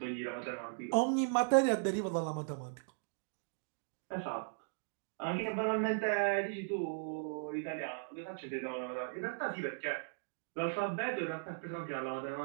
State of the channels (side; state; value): left; silent; digital silence